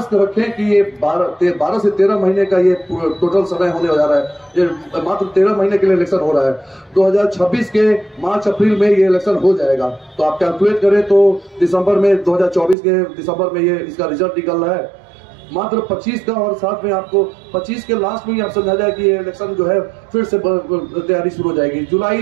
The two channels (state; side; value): drops out; left; at 12.8 s